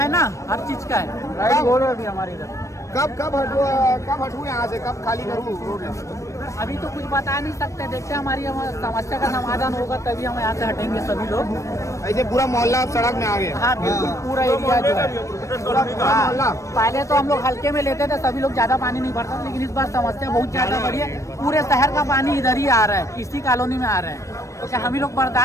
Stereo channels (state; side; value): late; right; 0.15 ms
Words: ना, हर चीज का है। राइट बोल रहे अभी हमारे इधर कब हटू यहाँ से, कब खाली करूँ रोड? अभी तो कुछ बता नहीं सकते, देखते हैं हमारी समस्या का समाधान होगा तभी हम यहाँ से हटेंगे सभी लोग। ऐसे पूरा मोहल्ला सड़क में आ गया? हाँ बिल्कुल, पूरा एरिया जो है। हाँ, पहले तो हम लोग हल्के में लेते थे, सभी लोग ज्यादा पानी नहीं भरता, लेकिन इस बार समस्या बहुत ज्यादा बढ़ी है। पूरे शहर का पानी इधर ही आ रहा है, इसी कॉलोनी में आ रहा है। तो क्या हम ही लोग